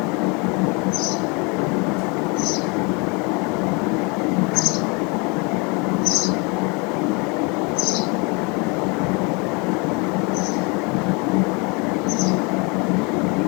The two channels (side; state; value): right; quieter; 30.0 dB